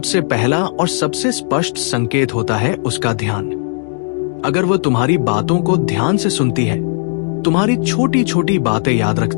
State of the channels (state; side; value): silent; right; digital silence